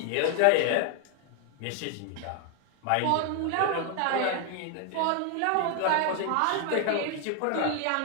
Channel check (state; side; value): different; both; correlation 0.01